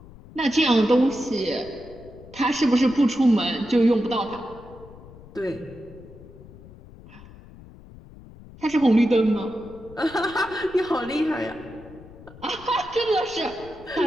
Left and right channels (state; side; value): noise; left; rumble, 20 dB below the sound